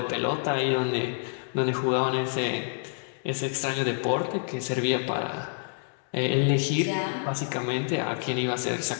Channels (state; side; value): silent; right; 60 dB below the other